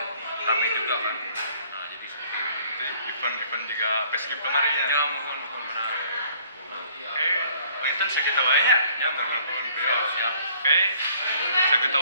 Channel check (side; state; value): both; inverted; correlation -0.58